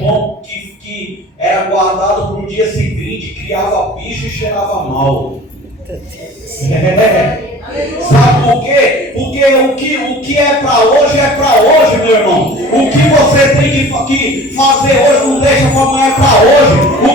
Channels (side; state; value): both; normal; correlation 0.44